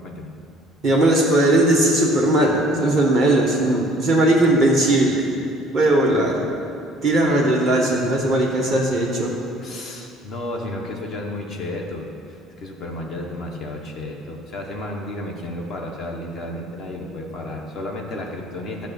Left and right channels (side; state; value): both; normal; correlation 0.56